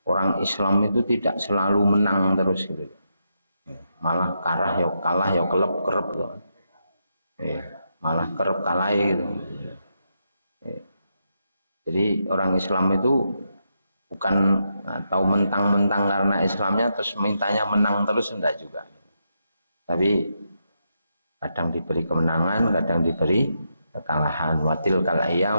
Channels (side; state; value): both; inverted; correlation -0.82